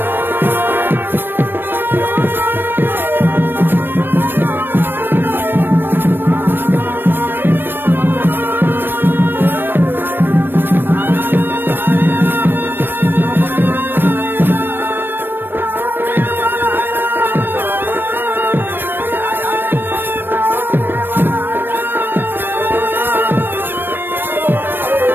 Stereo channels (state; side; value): late; left; 0.096 ms